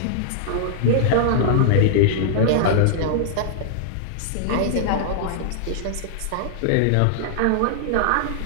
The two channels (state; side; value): different; both; correlation -0.01